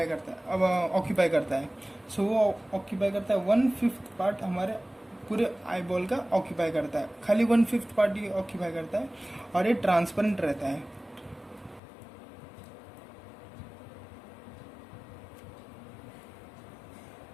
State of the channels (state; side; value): drops out; right; at 11.8 s